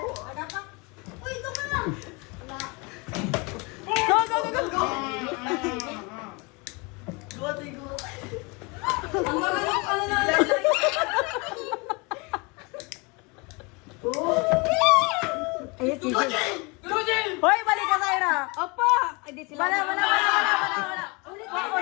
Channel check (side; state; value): right; quieter; 28.7 dB